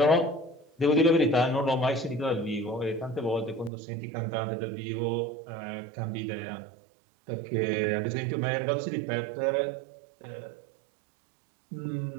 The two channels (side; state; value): left; drops out; at 3.7 s